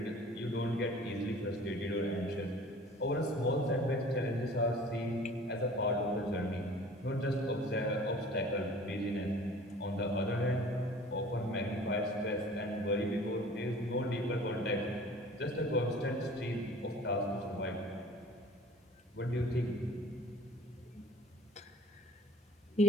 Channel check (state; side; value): normal; both; correlation 0.47